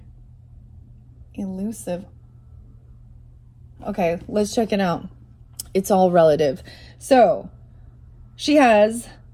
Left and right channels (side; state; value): both; identical; correlation 1.00